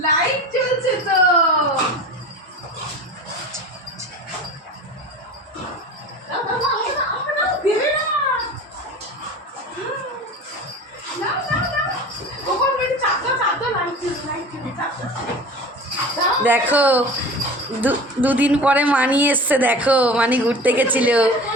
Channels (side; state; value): both; normal; correlation 0.36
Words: Light জ্বলছে তো। দেখো দুদিন পরে মানি এসছে, দেখো মানি ঘুরতে গেছিল,